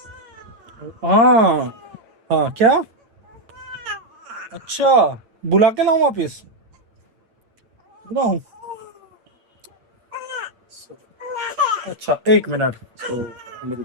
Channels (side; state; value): left; late; 8.6 ms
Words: हाँ हाँ, क्या? अच्छा, बुला के लाऊं वापिस? बुलाऊं? अच्छा, 1 मिनट। सो